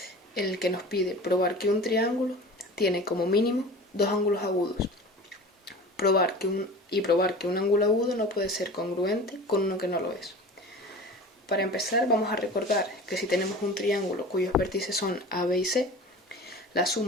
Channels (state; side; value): normal; both; correlation 0.37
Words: en el que nos pide probar que un triángulo tiene como mínimo dos ángulos agudos. Probar que un ángulo agudo no puede ser congruente con uno que no lo es. Para empezar, vamos a recordar que si tenemos un triángulo cuyos vértices son A, B y C, la